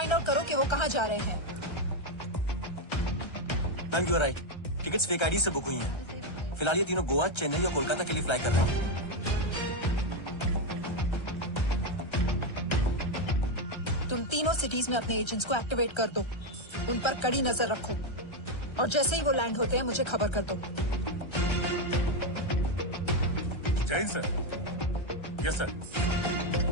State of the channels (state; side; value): late; right; 1.3 ms